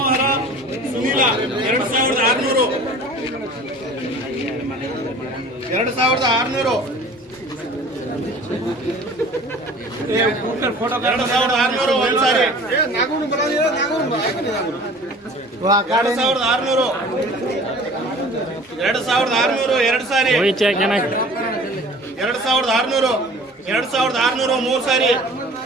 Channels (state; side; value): normal; both; correlation 0.45